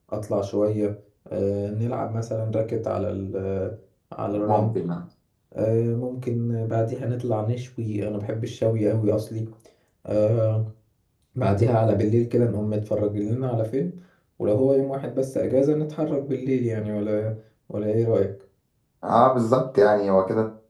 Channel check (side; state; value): both; identical; correlation 1.00